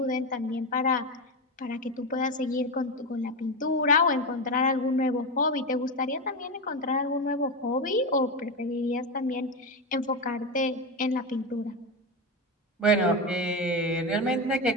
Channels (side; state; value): both; normal; correlation 0.15